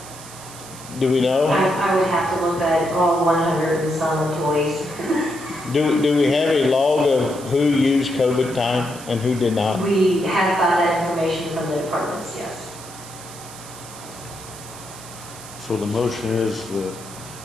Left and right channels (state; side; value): noise; right; hiss, 16 dB below the sound